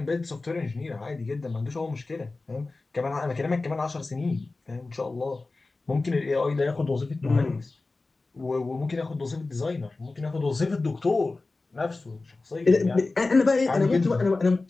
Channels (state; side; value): quieter; right; 3.4 dB